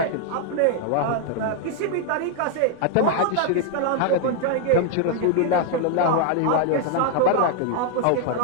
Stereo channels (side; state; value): both; different; correlation 0.00